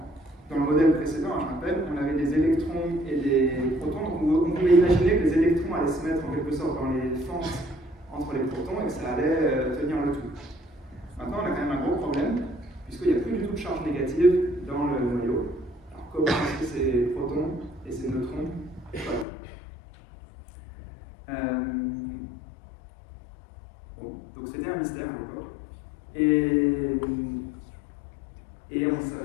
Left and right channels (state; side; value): drops out; right; at 19.2 s